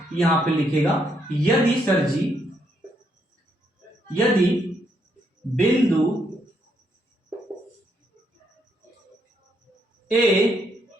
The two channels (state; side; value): normal; both; correlation 0.75